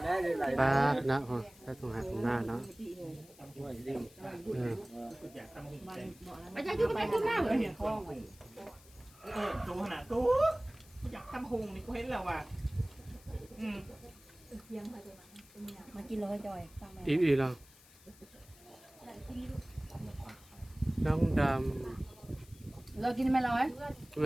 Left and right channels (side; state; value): left; noise; hiss, 24 dB below the sound